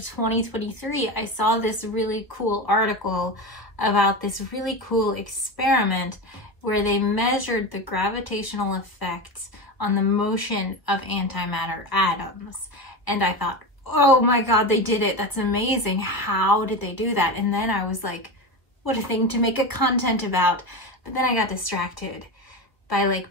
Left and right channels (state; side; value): late; right; 1.2 ms